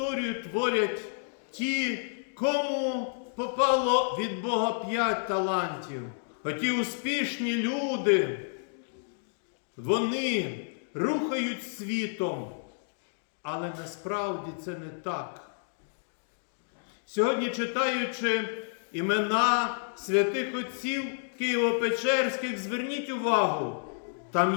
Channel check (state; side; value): silent; right; digital silence